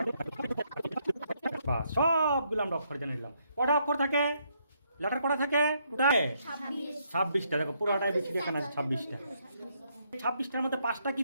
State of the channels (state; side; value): inverted; both; correlation -0.74